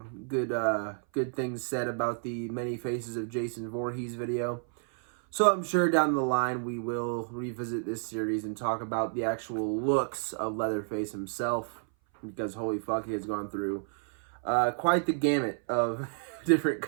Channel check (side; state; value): left; silent; 57 dB below the other